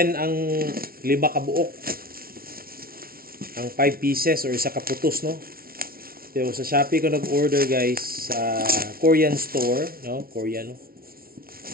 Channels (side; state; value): left; late; 0.43 ms